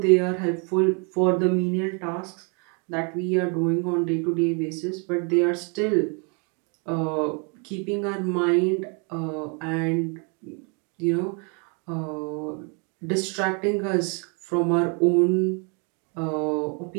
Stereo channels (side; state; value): left; quieter; 36.3 dB